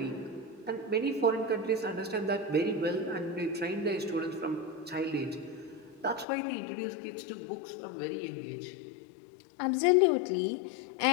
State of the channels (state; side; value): drops out; right; at 6.2 s